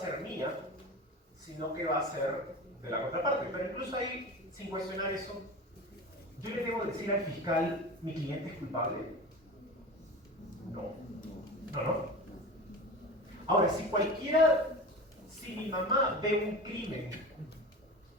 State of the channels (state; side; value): normal; both; correlation 0.30